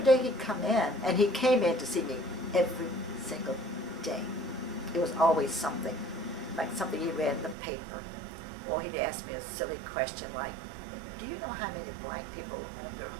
day he'd come in, and he came in to see me every single day. It was always something, like something he read in the paper. Or he'd ask me a silly question like, do you know how many black people own their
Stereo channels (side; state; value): left; drops out; at 7.6 s